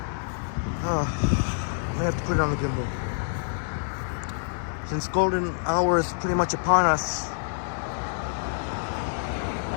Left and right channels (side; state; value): right; silent; digital silence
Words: I may have to put it on the gimbal. Since golden hour is pretty much upon us.